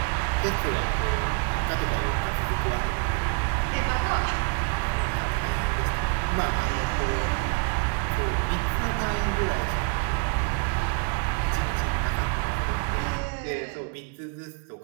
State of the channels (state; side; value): quieter; left; 36.9 dB